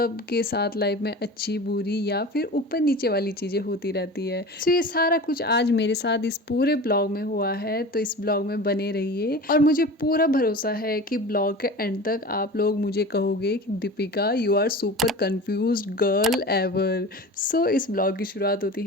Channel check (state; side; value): normal; both; correlation 0.35